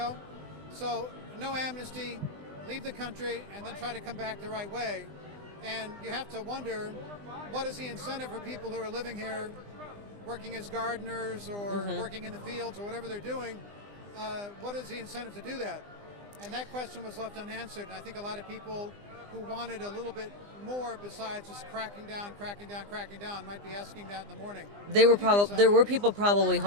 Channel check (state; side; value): late; left; 20 ms